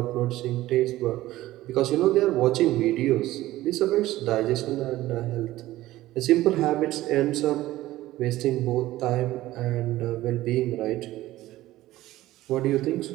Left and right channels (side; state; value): left; quieter; 16.1 dB